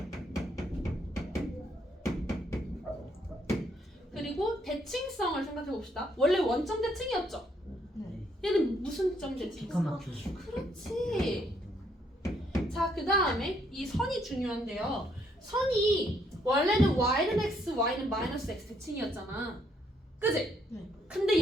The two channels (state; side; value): normal; both; correlation 0.71